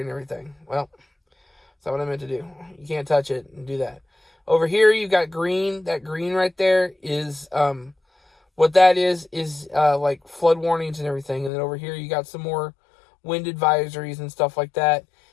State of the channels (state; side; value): drops out; right; at 11.5 s